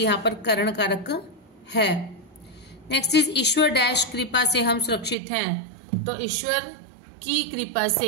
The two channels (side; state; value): left; drops out; at 5.2 s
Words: पर करण कारक है। नेक्स्ट इज ईश्वर डैश कृपा से हम सुरक्षित हैं। तो ईश्वर की कृपा से,